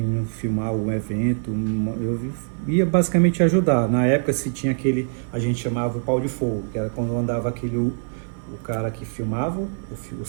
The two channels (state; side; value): silent; left; 55 dB below the other